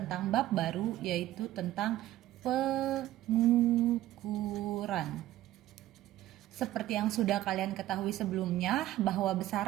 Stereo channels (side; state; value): left; quieter; 14.6 dB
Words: bab baru yaitu tentang pengukuran. Seperti yang sudah kalian ketahui sebelumnya, bahwa